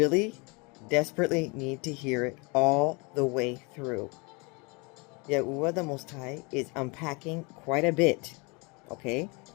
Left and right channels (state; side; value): quieter; right; 29.4 dB